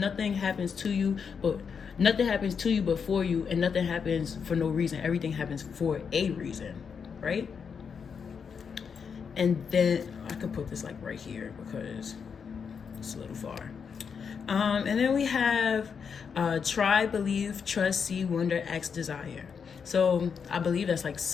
happens to you but for you, and nothing happens for no reason. Everything happens for a reason, right? And then I could put this like right here because it's a little far. And then we have try, believe, trust, see, wonder, act, desire. So I believe that's like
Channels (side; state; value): right; quieter; 6.4 dB